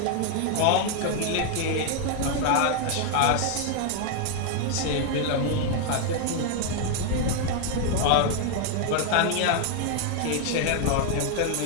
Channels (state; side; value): different; both; correlation 0.00